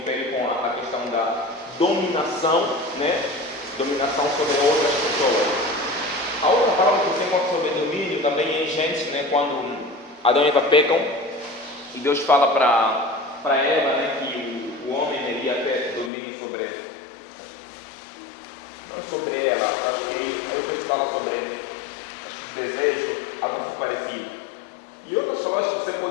com a questão da dominação, né? Dominação sobre outras pessoas. A outra palavra que você encontra sobre domínio também é em Gênesis, né? Quando Adão e Eva pecam e Deus fala para Eva, né, que o homem iria ter domínio sobre ela. Não sobre ela, acho que aí Deus fala sobre desejo, algo parecido. E outras palavras que você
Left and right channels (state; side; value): drops out; right; at 16.1 s